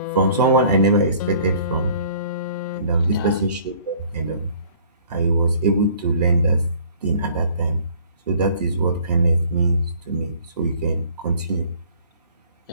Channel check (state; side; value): inverted; both; correlation -0.54